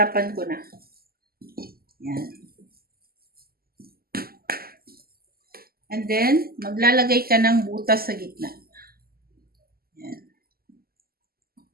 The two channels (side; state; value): left; late; 0.44 ms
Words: ko na. Yan. And then, maglalagay ka ng butas sa gitna. Yan.